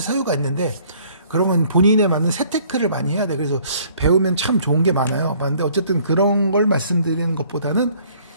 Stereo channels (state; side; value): inverted; both; correlation -0.59